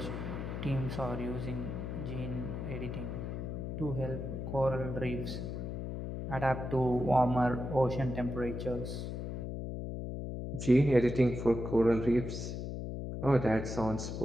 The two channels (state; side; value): noise; left; hum, 5 dB below the sound